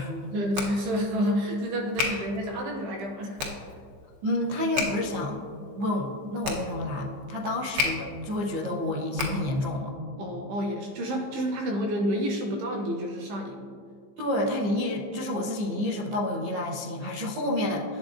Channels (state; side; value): late; left; 15 ms